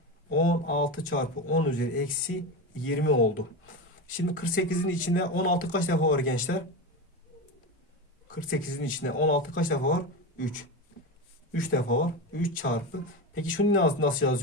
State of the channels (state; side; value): normal; both; correlation 0.20